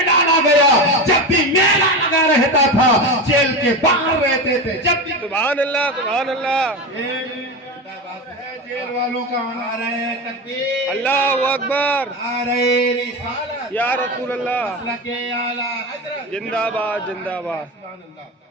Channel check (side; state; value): both; normal; correlation 0.21